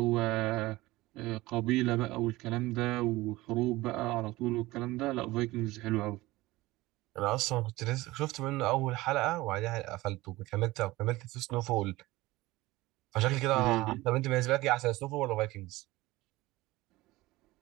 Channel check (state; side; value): quieter; left; 19.2 dB